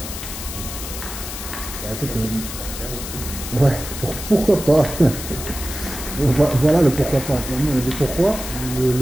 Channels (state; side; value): noise; left; hiss, 8 dB below the sound